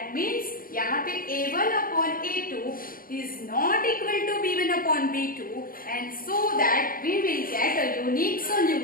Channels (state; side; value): late; right; 0.41 ms